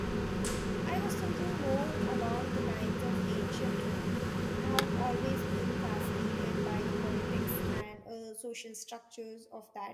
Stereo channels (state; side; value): identical; both; correlation 1.00